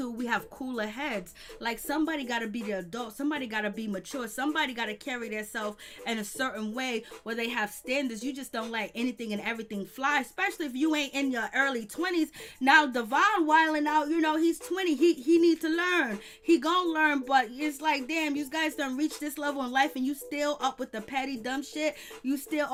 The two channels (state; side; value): identical; both; correlation 1.00